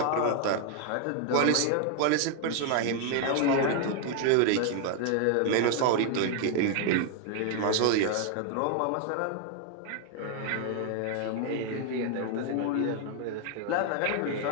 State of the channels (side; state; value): both; different; correlation 0.00